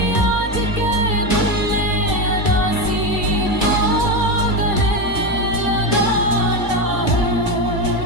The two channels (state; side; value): late; right; 2.1 ms